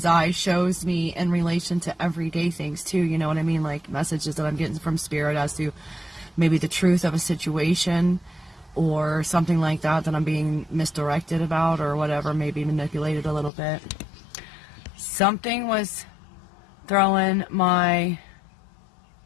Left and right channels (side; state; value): right; drops out; at 13.5 s